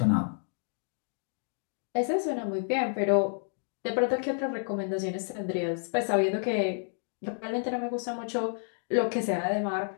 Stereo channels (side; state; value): right; silent; digital silence